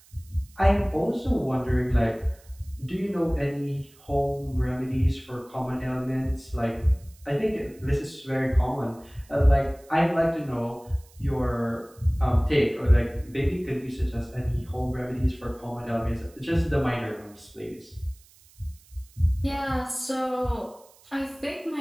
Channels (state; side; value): noise; right; hiss, 27 dB below the sound